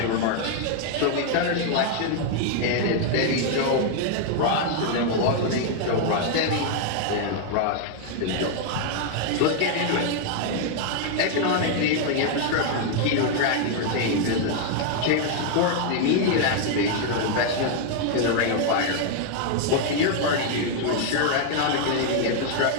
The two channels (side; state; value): both; different; correlation 0.00